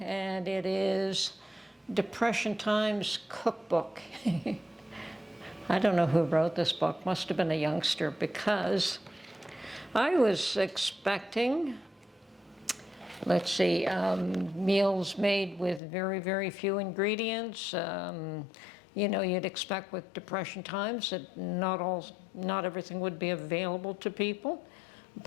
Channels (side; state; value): right; drops out; at 15.8 s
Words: and it is Depression Times Cookbook. I don't know who wrote this book. Must have been a youngster, because I was expecting, let's see, meals made with very, very few ingredients. You know, you'd expect with Depression times that not everything would be available to people,